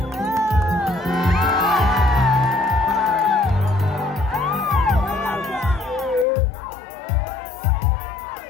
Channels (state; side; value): drops out; right; at 6.2 s